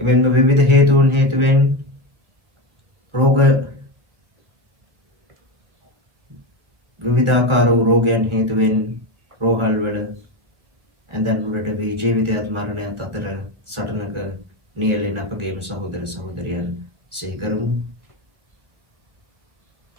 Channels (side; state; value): left; late; 1.1 ms